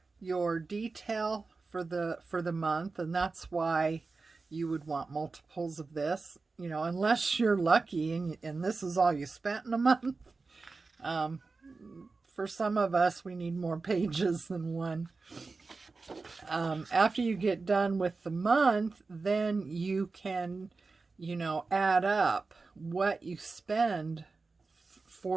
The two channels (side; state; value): left; quieter; 4.0 dB